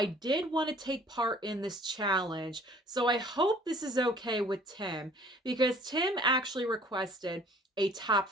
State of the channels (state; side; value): normal; both; correlation 0.53